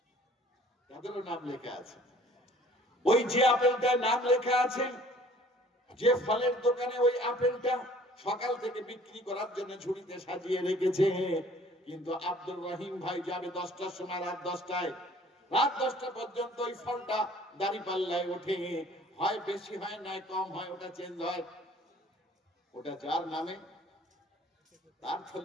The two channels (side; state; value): both; normal; correlation 0.53